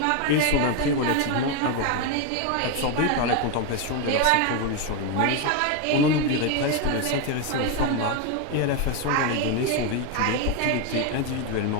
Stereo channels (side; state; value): both; different; correlation 0.02